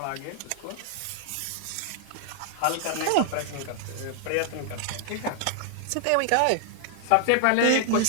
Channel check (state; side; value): different; both; correlation -0.01